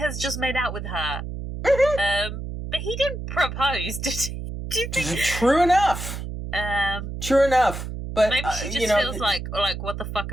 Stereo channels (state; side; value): noise; right; hum, 7 dB below the sound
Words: just made out with her. But he didn't propose, did he? Do you think? True enough. True enough. But maybe she just feels like, what the fuck